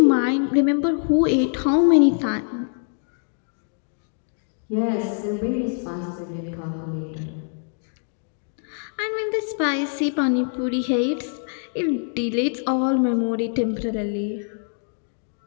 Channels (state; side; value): silent; right; 62 dB below the other